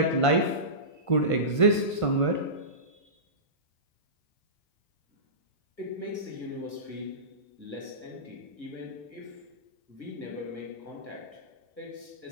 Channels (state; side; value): late; right; 1.5 ms